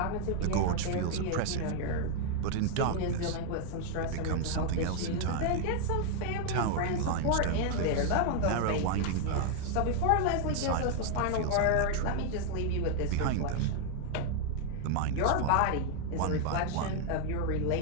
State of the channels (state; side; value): different; both; correlation 0.00